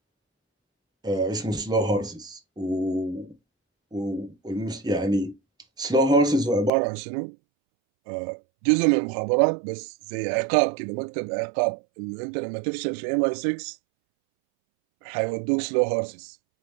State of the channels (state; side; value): drops out; left; at 6.7 s